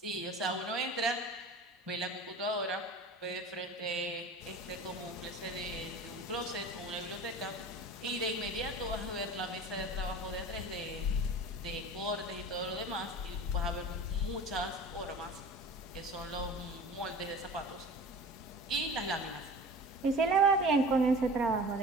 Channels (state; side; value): normal; both; correlation 0.38